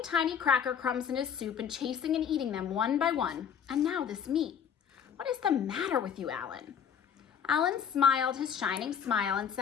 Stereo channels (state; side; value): quieter; right; 7.9 dB